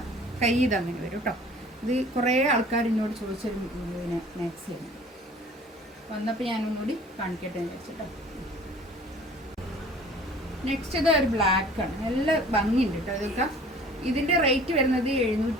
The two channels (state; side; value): normal; both; correlation 0.49